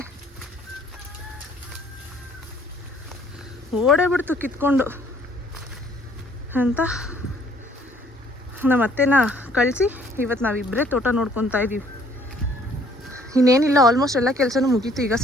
ಓಡೇ ಬಿಡ್ತು ಕಿತ್ಕೊಂಡು ಅಂತ ನಮ್ಮ ಅತ್ತೆನ ಕಳಿಸಿ ಇವತ್ತು ನಾವಿಬ್ಬರೇ ತೋಟ ನೋಡ್ಕೊತಾ ಇದ್ದೀವಿ ಇನ್ನೇನಿಲ್ಲ ಆಲ್ಮೋಸ್ಟ್ ಎಲ್ಲ ಕೆಲಸನೂ ಮುಗೀತು ಈಗ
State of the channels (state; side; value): normal; both; correlation 0.61